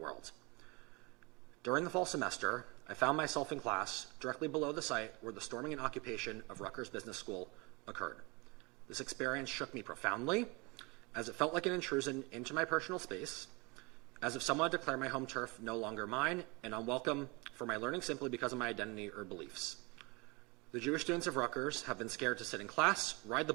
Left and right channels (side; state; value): left; quieter; 27.3 dB